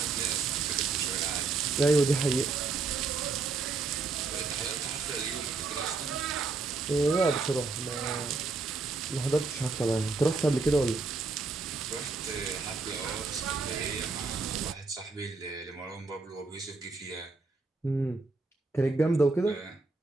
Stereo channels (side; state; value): left; quieter; 4.0 dB